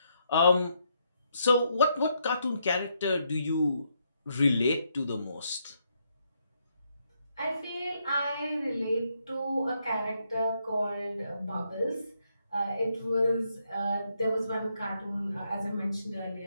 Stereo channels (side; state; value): both; inverted; correlation -0.77